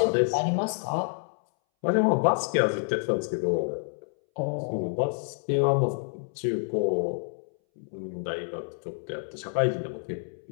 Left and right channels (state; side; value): silent; right; 59 dB below the other